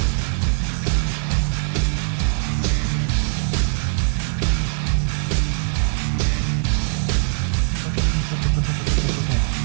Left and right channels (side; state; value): left; silent; digital silence